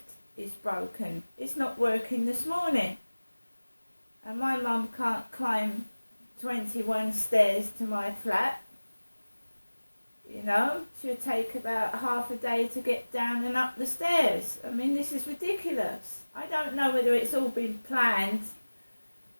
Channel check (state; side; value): inverted; both; correlation -1.00